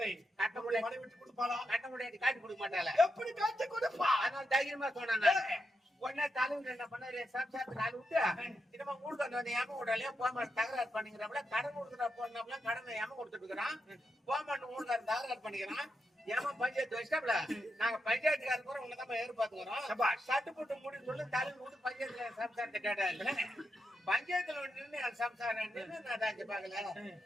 கட்ட முடியாது விட்டு கொடுப்பாளா கட்ட முடியாது காட்டி கொடுக்க மாட்டாள எப்படி காட்டி கொடுப்பா அதனால தைரியமா சொன்னேன். உடனே தலைவர் என்ன பண்ணாரு சம்சாரத்துக்கு ஆள் விட்டு இனிமே ஊருக்கு வந்து ஏம விடலையே போமாட்டு தகராறு பண்ணிக்கிறப்பல கடன் கொடுத்துட்டா போனாப்ல கடனை ஏம கொடுத்துட்டு இருக்கிறான். போமாட்டு ஊருக்காரன் தகராறு பண்ணிக்கிறான். ஏமா பஞ்சாயத்து வச்சிட்டாப்ல நாங்க பஞ்சாயத்துக்காரர் கூட உன்னதான் எதிர்பார்த்துக்கிறோம். சட்டு போட்டு முடின்னு சொல்லி தலைவர் விட்டு பஞ்சாயத்துல சம்சாரத்தை கேட்டாரு. பஞ்சாயத்துல நின்று என் சம்சாரம் நின்று நான் தாண்டி பாக்கல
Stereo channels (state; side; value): normal; both; correlation 0.84